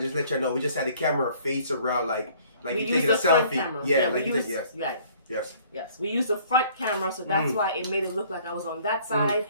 Just let you know, we just had the camera face around like you taking a selfie. Yeah, like you yes. Yes. We used the front camera, so that's why it made it look like I was on that side,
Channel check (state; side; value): inverted; both; correlation -0.57